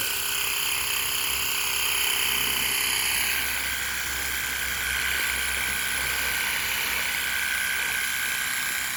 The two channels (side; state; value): right; noise; rumble, 26 dB below the sound